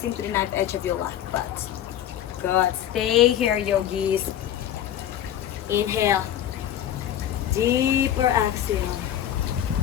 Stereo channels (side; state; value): right; quieter; 11.0 dB